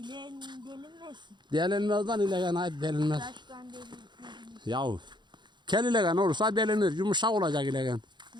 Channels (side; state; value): left; late; 0.22 ms